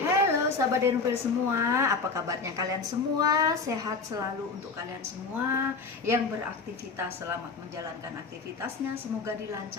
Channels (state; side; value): quieter; right; 4.5 dB